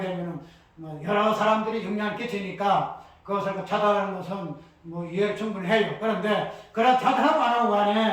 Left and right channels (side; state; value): both; identical; correlation 1.00